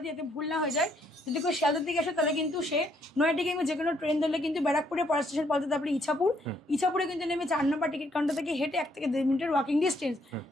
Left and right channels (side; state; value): both; normal; correlation 0.70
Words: দিই যাতে ভুল না হয়ে যায়। যদি কেউ শিয়ালদার দিকে আসে তাহলে কিন্তু সে নয়াটি কিংবা যে কোনো ট্রেন ধরলে কিন্তু ব্যারাকপুরে পর স্টেশন পৌঁছাতে, তারপরে ইছাপুরে কিন্তু নেমে 4 নম্বর টিকিট কাউন্টার থেকে হেঁটে 1 থেকে 1.5 মিনিটের ওয়াকিং ডিস্টেন্স।